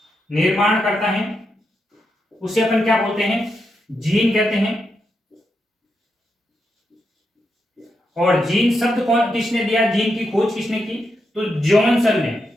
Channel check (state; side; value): normal; both; correlation 0.84